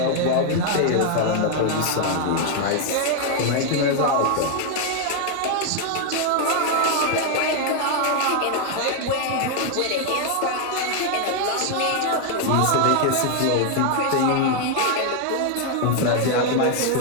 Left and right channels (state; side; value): different; both; correlation 0.00